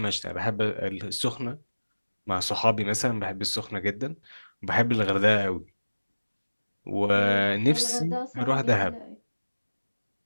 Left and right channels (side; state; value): both; inverted; correlation -1.00